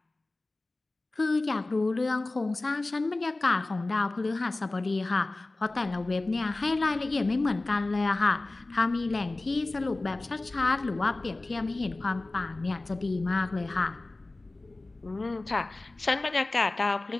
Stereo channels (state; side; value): quieter; right; 3.0 dB